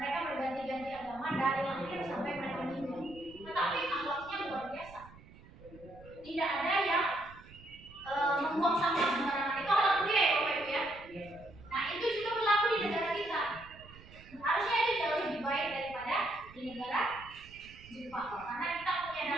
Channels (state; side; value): noise; right; rumble, 21 dB below the sound